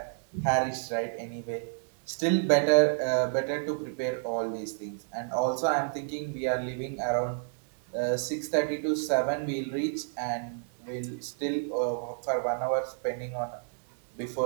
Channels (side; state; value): left; silent; digital silence